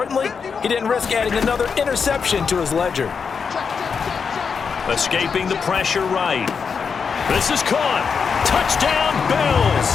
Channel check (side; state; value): right; quieter; 5.9 dB